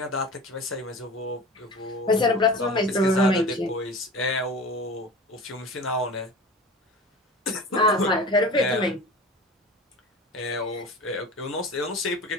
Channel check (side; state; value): both; normal; correlation 0.36